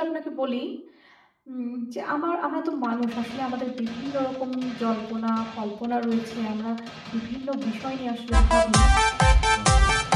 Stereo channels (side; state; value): both; identical; correlation 1.00